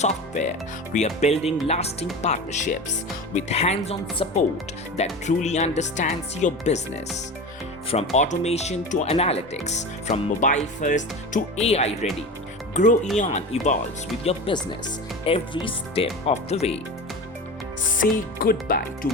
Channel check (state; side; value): normal; both; correlation 0.30